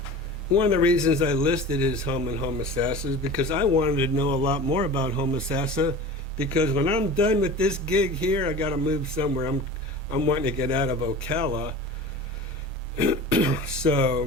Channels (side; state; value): both; normal; correlation 0.35